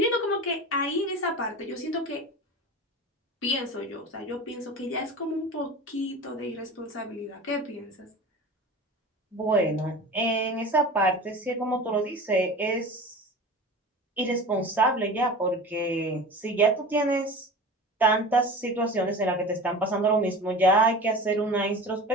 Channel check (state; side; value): normal; both; correlation 0.34